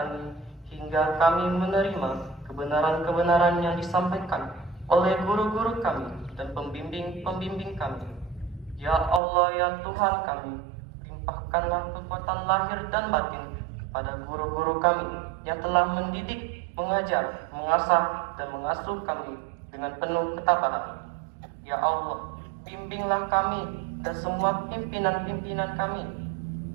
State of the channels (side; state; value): left; drops out; at 9.2 s